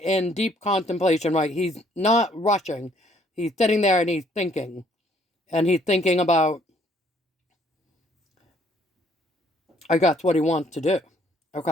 deep contemplation, right? He's not rushing. He's sitting there and he's thinking. And he's thinking about, I guess, what he wants to do.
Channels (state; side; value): normal; both; correlation 0.64